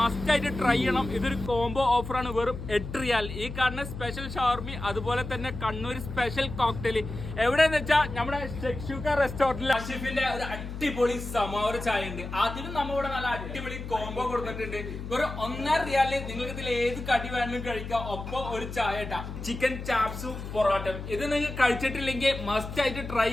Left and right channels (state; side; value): noise; left; hum, 8 dB below the sound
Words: ആയിട്ട് ട്രൈ ചെയ്യണം. ഇതൊരു കോംബോ ഓഫറാണ്, വെറും 8 റിയാൽ. ഈ കാണുന്ന സ്പെഷ്യൽ ഷവർമി, അതുപോലെ തന്നെ കണ്ണൂർ സ്പെഷ്യൽ കോക്ടെയിൽ എവിടെയെന്ന് വെച്ചാൽ നമ്മുടെ ഷെക്ഷൂക്ക റെസ്റ്റോറന്റിൽ അഷിഫിന്റെ ഒരു അടിപൊളി സമാവർ ചായ ഉണ്ട്. അതിലും നമ്മളിവിടെ നല്ല അടിപൊളി കോംബോ കൊടുത്തിട്ടുണ്ട്. വെറും 1.5 റിയാലിൽ നിങ്ങൾക്ക് ഇതിൽ ഏത് കടി വേണമെങ്കിലും കഴിക്കാം. ഒപ്പം ഒരു ചായ ഇട്ടാ ചിക്കൻ ചാപ്സും പൊറോട്ടയും. ഇത് നിങ്ങൾ കഴിച്ചിട്ടില്ലെങ്കിൽ മസ്റ്റ് ആയിട്ട് ട്രൈ